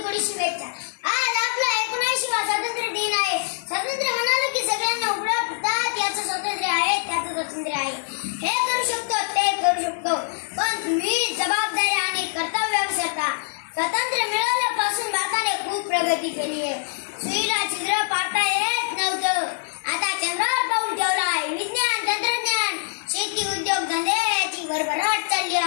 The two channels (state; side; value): silent; right; 63 dB below the other